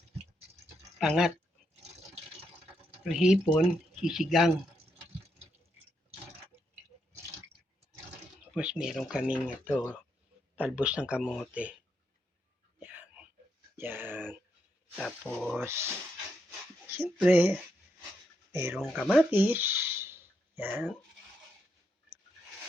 pangat. Yung hipon, sisigang. Tapos meron kaming talbos ng kamote. Yan. Tapos, siyempre, merong kamatis. Yan.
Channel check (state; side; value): normal; both; correlation 0.80